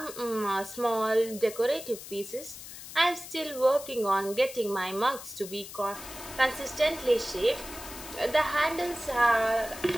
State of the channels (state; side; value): noise; left; hiss, 13 dB below the sound